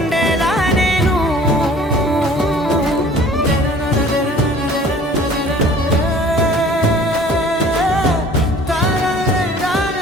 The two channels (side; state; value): both; normal; correlation 0.50